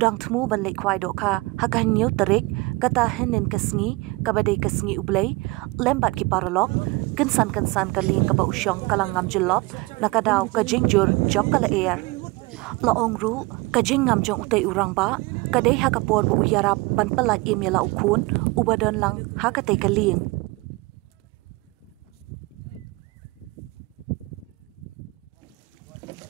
thmu ban le khwai do kha hakan new tarik kata henin kasngi kabadai kasngi ublei lembat ki paralok kensan kaling kaba usyong kalang ngam jelop nakadaw kajing jur jong kala air laong ru kajing ngam jong utei urang ba kadai hakapor bo uyarap ban palat imela ukhun ubadon lang hakatei kaling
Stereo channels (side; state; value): left; quieter; 24.1 dB